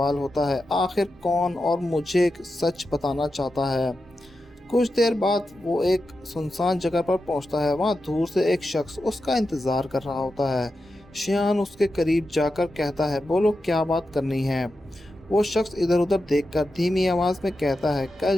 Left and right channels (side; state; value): both; normal; correlation 0.90